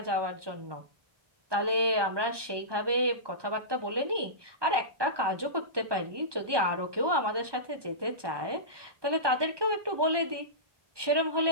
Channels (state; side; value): late; left; 1.2 ms